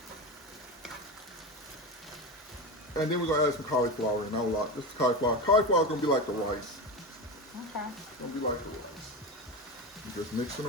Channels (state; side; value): normal; both; correlation 0.21